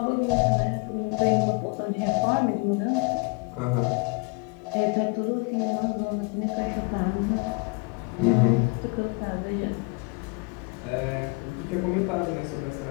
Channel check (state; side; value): quieter; right; 31.4 dB